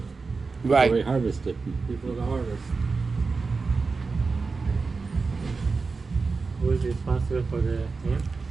Right. Before we harvest it. Before the harvest. Who is responsible for the him?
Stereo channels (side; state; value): left; quieter; 4.4 dB